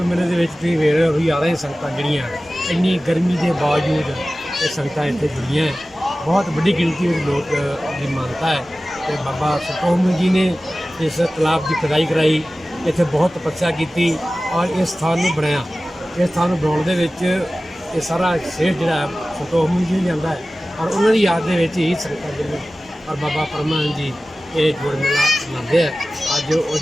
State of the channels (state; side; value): normal; both; correlation 0.96